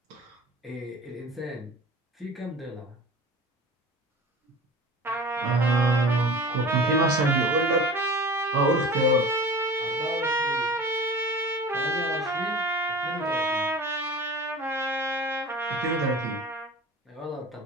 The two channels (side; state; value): both; normal; correlation 0.37